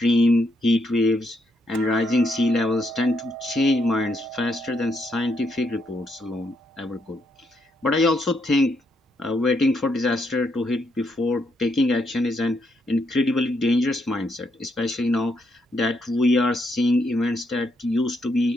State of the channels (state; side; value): normal; both; correlation 0.77